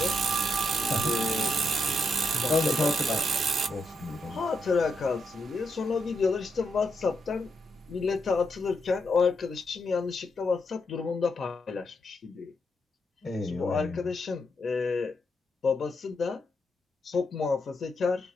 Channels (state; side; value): normal; both; correlation 0.81